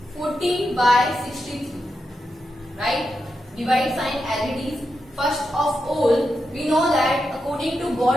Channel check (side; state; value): both; normal; correlation 0.87